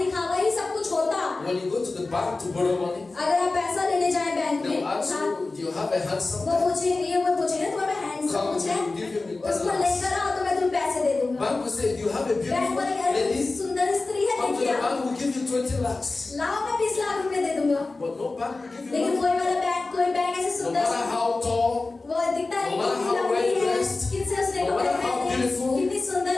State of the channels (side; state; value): right; quieter; 3.5 dB